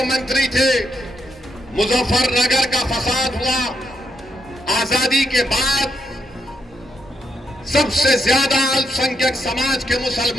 थे, मुजफ्फरनगर का फसाद हुआ। आजादी के बाद सबसे ज्यादा अल्पसंख्यक समाज के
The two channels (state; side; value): normal; both; correlation 0.79